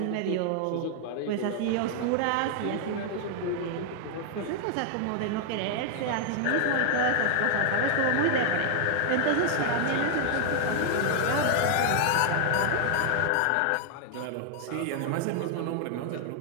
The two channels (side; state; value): both; different; correlation 0.00